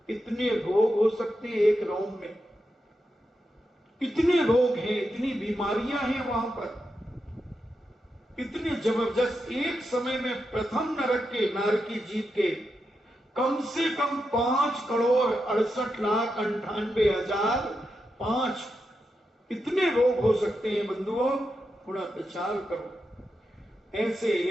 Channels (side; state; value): both; normal; correlation 0.86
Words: इतने रोग हो सकते हैं एक रोम में। इतने रोग हैं, इतनी बीमारियां हैं वहां पर, इतने जबरदस्त। एक समय में प्रथम नरक के, नारकी जीव के कम से कम 5,68,98,005 इतने रोग हो सकते हैं। बंधुओं, थोड़ा विचार करो। ऐसे